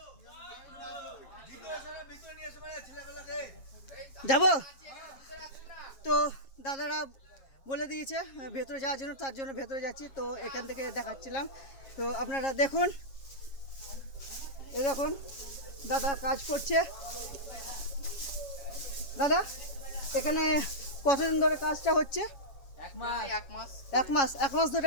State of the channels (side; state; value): right; late; 7.4 ms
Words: যাব তো দাদারা বলে দিয়েছে ভেতরে যাওয়ার জন্য, তার জন্য ভেতরে যাচ্ছি। তো এখান থেকে দেখাচ্ছিলাম, তো আপনারা দেখুন। এই দেখুন দাদা কাজ করছে। দাদা এখানে কতদিন ধরে কাজটা হচ্ছে? এক মাস